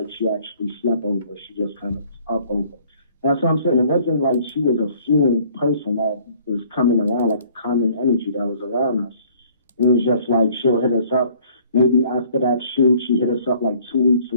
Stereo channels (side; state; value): both; inverted; correlation -0.58